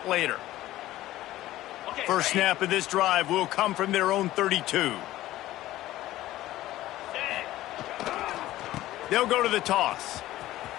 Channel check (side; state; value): right; quieter; 15.4 dB